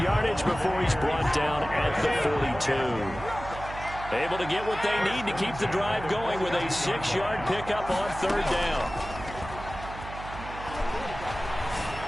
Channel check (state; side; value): noise; right; hum, 12 dB below the sound